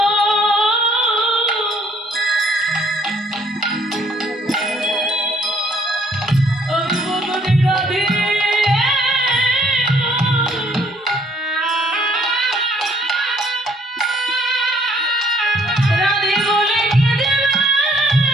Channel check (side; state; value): both; normal; correlation 0.64